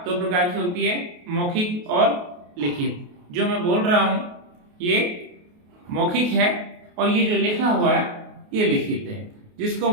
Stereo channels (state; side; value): late; left; 28 ms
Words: 2 प्रकार की होती है, मौखिक और लिखित। जो मैं बोल रहा हूं ये मौखिक है और ये जो लिखा हुआ है ये लिखित है। जिसको